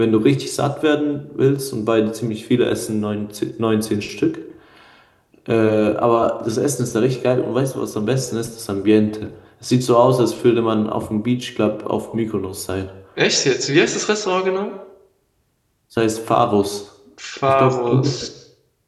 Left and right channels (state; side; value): identical; both; correlation 1.00